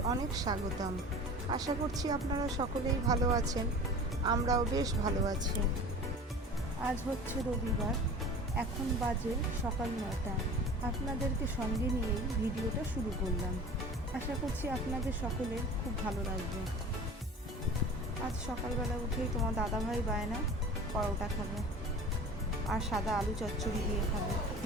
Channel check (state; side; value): normal; both; correlation 0.39